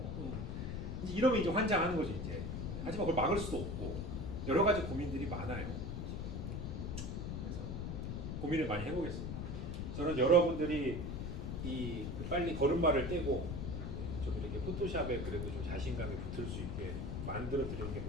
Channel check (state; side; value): noise; left; rumble, 4 dB below the sound